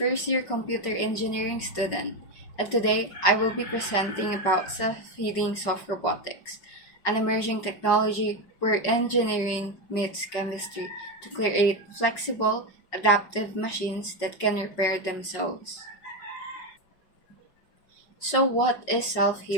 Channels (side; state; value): right; late; 5.4 ms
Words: computer engineering student, and today I will be presenting about self-healing soft robotics, an emerging technology where engineering meets chemistry to create flexible, adaptive machines that can repair themselves. So, what is